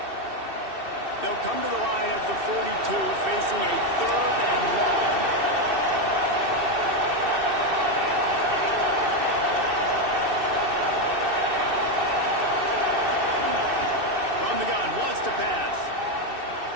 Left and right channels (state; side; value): late; left; 2.7 ms